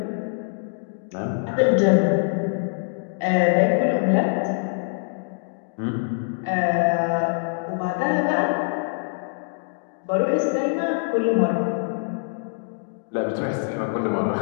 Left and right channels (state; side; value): silent; right; digital silence